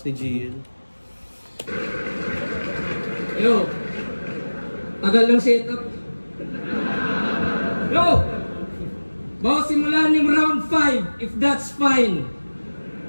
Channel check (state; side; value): inverted; both; correlation -1.00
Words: ni GL. Yo! Tagal ng setup. Yo! Bago simulan yung round 5, if that's fine.